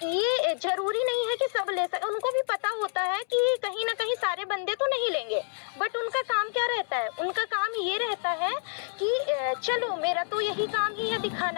ये जरूरी नहीं है कि सब ले सके। उनको भी पता होता है कि कहीं ना कहीं सारे बंदे तो नहीं लेंगे, बट उनका काम क्या रहता है, उनका काम ये रहता है कि चलो मेरा तो यही काम ही है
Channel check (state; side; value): silent; right; 59 dB below the other